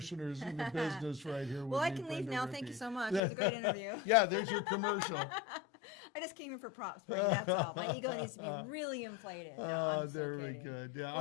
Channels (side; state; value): right; drops out; at 3.2 s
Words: in the business right here with Well, I me, can leave Brenda now. Rippee. Thank you so much. It was a great interview. Yeah, there's your commercial. I just came in for props, Brenda, that's all. My ego needs to be really inflated. No, I'm so very kidding. good. Yeah,